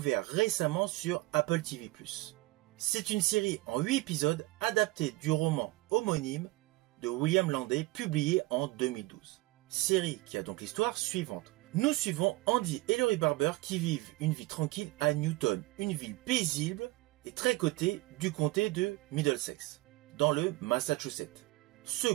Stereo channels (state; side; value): quieter; left; 21.0 dB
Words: récemment sur Apple TV+. C'est une série en 8 épisodes adaptée du roman homonyme de William Landay, publié en 2012. Série qui a donc l'histoire suivante. Nous suivons Andy et Laurie Barber qui vivent une vie tranquille à Newton, une ville paisible et très cotée du comté de Middlesex, dans le Massachusetts. Ce